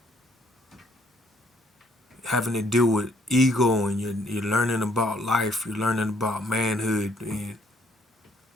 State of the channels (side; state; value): both; normal; correlation 0.66